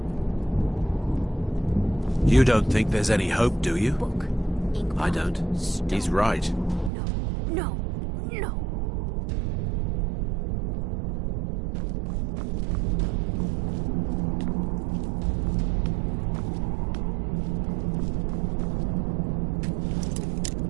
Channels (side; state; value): left; drops out; at 6.9 s